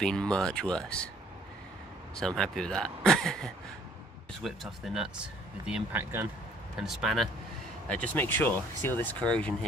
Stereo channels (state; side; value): normal; both; correlation 0.59